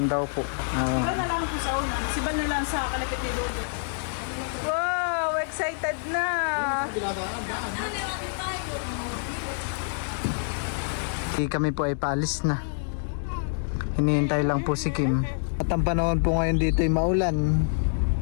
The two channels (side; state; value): right; silent; digital silence